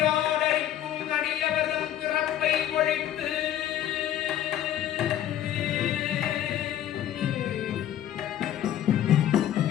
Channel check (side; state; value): right; quieter; 11.5 dB